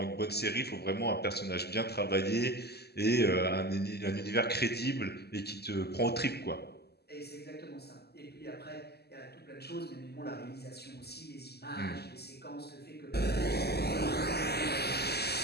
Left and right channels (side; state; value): right; late; 0.47 ms